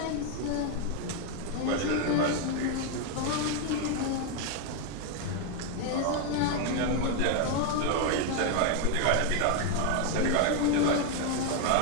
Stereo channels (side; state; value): both; different; correlation 0.01